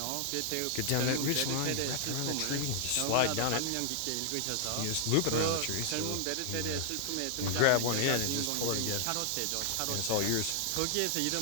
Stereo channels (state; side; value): different; both; correlation 0.00